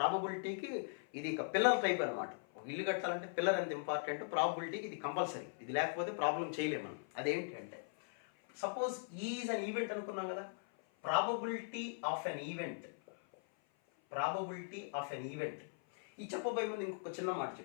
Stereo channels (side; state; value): right; silent; 51 dB below the other